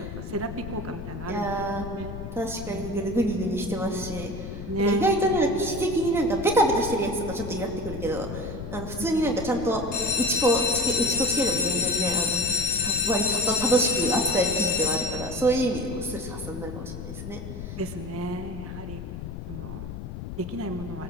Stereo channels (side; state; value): left; noise; rumble, 9 dB below the sound